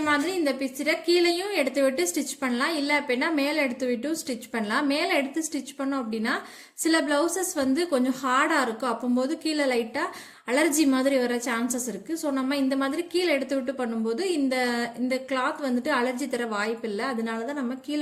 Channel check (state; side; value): identical; both; correlation 1.00